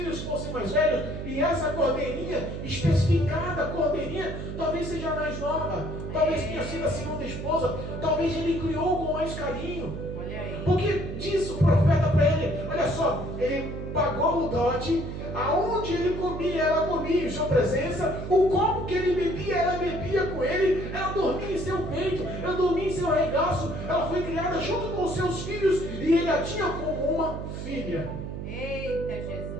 fossem mais velhos e essa cordeirinha, especificada cordeirinha, talvez seja mais nova, talvez tenha sido a segunda esposa, talvez ele criou com mais carinho. Olha aí. Porque diz o profeta para ele: olha só, ele pagou o dote, aonde ele comia, ela comia em sua presença, o copo que ele bebia, ela bebia com ele, ela dormia em seu peito, ela dormia em seu regaço, ela foi criada criada junto com os seus filhos e ele a tinha como uma filha. Eita,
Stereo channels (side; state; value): right; noise; hum, 7 dB below the sound